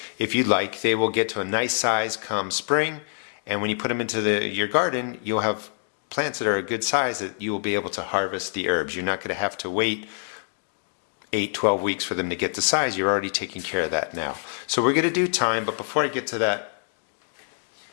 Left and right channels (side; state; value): right; silent; digital silence